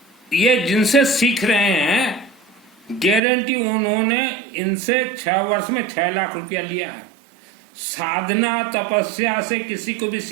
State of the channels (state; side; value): drops out; left; at 3.2 s